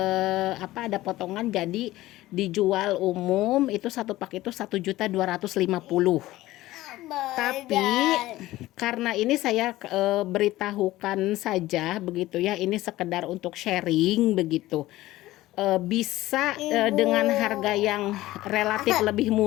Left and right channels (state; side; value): quieter; right; 16.7 dB